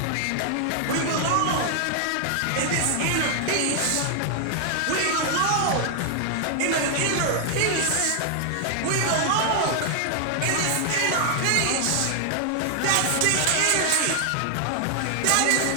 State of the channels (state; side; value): different; both; correlation 0.00